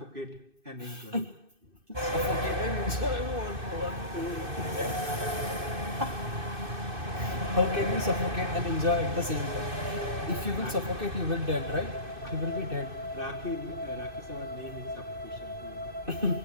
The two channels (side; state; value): left; late; 2.6 ms